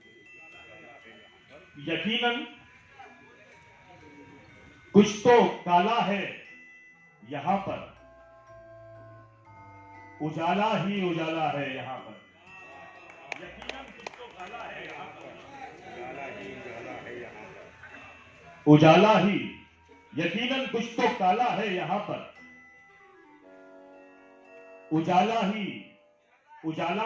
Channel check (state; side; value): identical; both; correlation 1.00